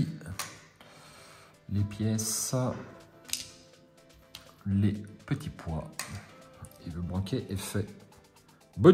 Les pièces, les petits pois. Et le banquet est fait.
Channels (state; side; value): identical; both; correlation 1.00